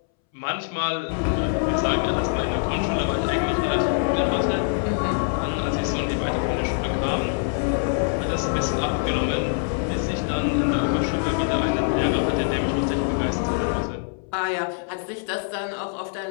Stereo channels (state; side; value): silent; right; 62 dB below the other